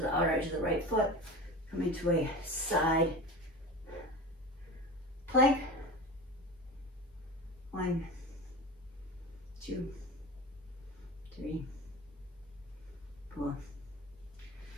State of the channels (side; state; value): both; normal; correlation 0.31